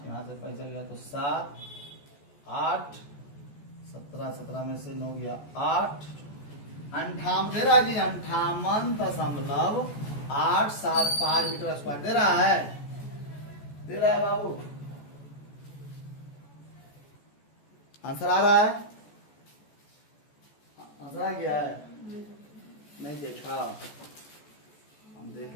यहाँ से पैसा गया तो 7, 8, 17 में से 9 गया 8, 58 दे रहा जी, 58.875 मीटर स्क्वायर दे रहा है, दे रहा है बाबू, आंसर आ रहा है, आंसर आ गया है, नहीं देखा, हम देख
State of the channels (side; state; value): right; late; 14 ms